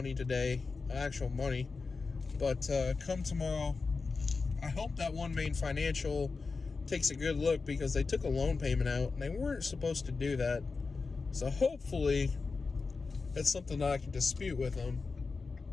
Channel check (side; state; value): right; quieter; 4.4 dB